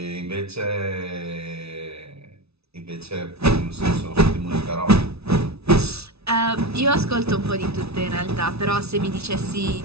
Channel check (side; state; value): left; late; 0.79 ms